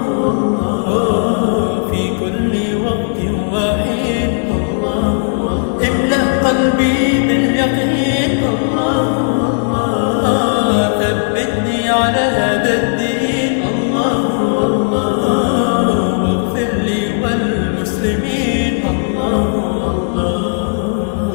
الله، في كل وقت وحين الله، املأ قلبي باليقين الله، الله، ثبتني على هذا الدين الله، الله، واغفر لي والمسلمين الله، الله.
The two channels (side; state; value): right; silent; digital silence